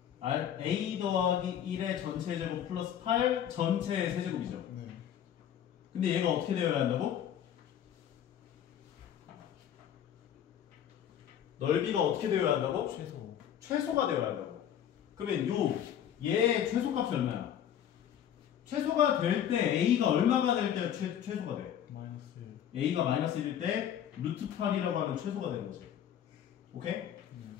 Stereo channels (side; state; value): right; quieter; 9.8 dB